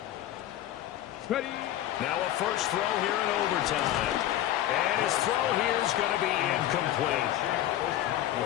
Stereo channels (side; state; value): right; quieter; 13.0 dB